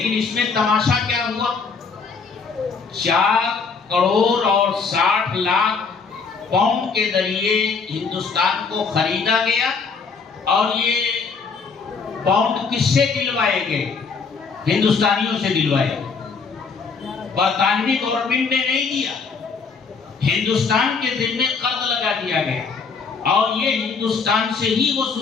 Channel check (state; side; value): quieter; right; 5.1 dB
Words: اس میں تماشا کیا ہوا؟ 4 کروڑ اور 60 لاکھ پاؤنڈ کے ذریعے ہندوستان کو خریدا گیا، اور یہ پاؤنڈ کس سے دلوائے گئے؟ ہندوستانیوں سے دلوائے گئے۔ برطانوی گورنمنٹ نے نہیں دیا، ہندوستان کے ذمے قرض لگا دیا گیا، اور یہ ہندوستان سے ہی